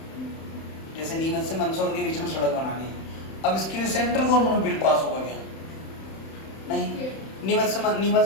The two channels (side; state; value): right; late; 31 ms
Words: जैसे नीमच से मंदसौर के बीच में सड़क बनानी है, अब इसके लिए सेंट्रल गवर्नमेंट बिल पास होगा क्या? नहीं।